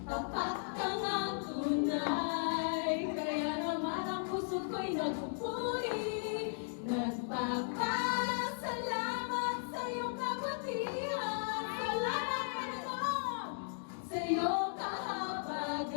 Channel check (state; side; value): silent; right; digital silence